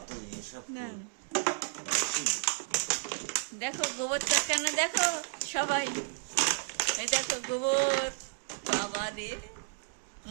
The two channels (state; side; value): silent; left; digital silence